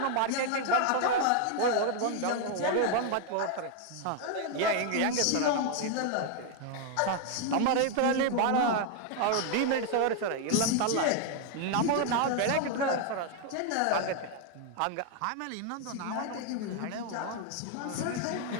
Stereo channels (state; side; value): different; both; correlation 0.00